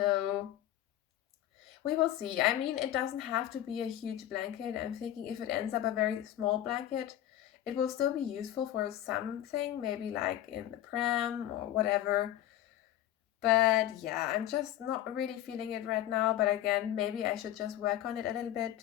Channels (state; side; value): quieter; right; 12.5 dB